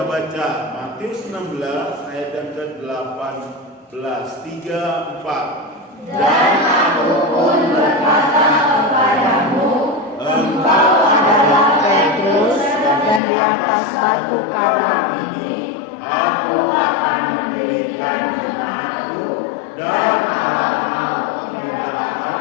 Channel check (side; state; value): right; drops out; at 13.2 s